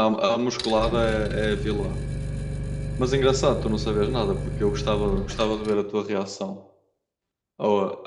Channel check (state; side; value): identical; both; correlation 1.00